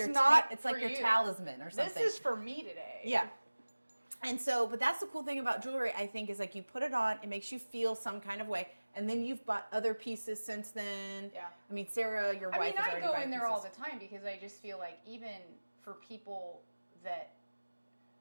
not it's like for your you. talisman or something. This is for me today. Yeah. And so, but that's the cool thing about jewelry, I think, is like you put it on, it makes you feel some kind of way, and then you've bought other pieces since then. Yeah. I mean, Sarah, your wife, is I already go buying in there all pieces. the time because I just feel like even for people that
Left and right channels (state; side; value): inverted; both; correlation -1.00